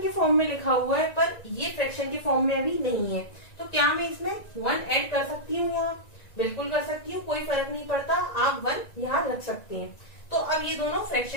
के फॉर्म में लिखा हुआ है, पर ये फ्रैक्शन के फॉर्म में अभी नहीं है। तो क्या मैं इसमें 1 ऐड कर सकती हूँ? यहाँ बिल्कुल कर सकती हूँ, कोई फर्क नहीं पड़ता, आप 1 यहाँ रख सकते हैं। तो अब ये दोनों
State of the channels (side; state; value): right; late; 1.9 ms